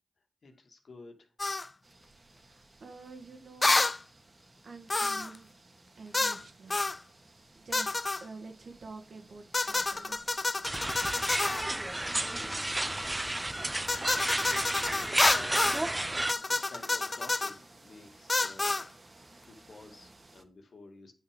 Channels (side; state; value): both; normal; correlation 0.98